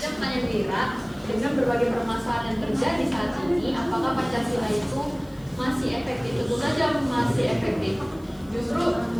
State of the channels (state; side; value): noise; left; hiss, 28 dB below the sound